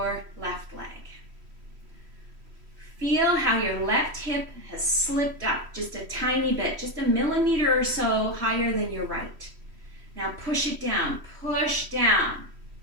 left leg. Feel how your left hip has slipped up just a tiny bit, just a millimeter or so higher than your right. Now push it down, push down.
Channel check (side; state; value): left; late; 3.1 ms